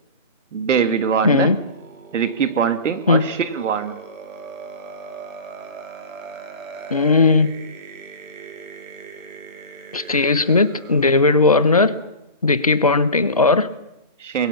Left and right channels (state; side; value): inverted; both; correlation -0.32